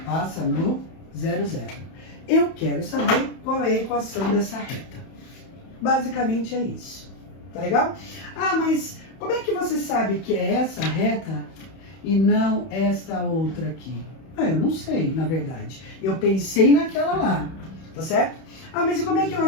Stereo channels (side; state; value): right; late; 31 ms